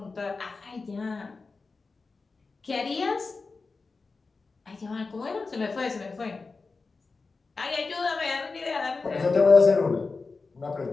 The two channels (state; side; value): quieter; right; 4.1 dB